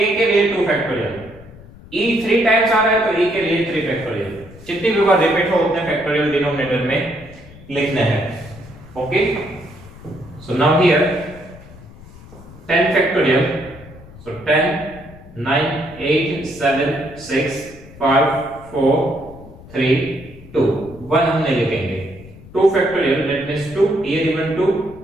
के लिए 2 फैक्टोरियल, E 3 टाइम्स आ रहा है तो E के लिए 3 फैक्टोरियल। जितनी भी बार रिपीट हो उतने फैक्टोरियल डिनोमिनेटर में लिखने हैं। Okay, so now here 10 factorial, so 10 9 8 7 6 5 4 3 2, 1 हम नहीं लिखेंगे, 2 factorial, that means 2 here even 2,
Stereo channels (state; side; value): noise; left; rumble, 19 dB below the sound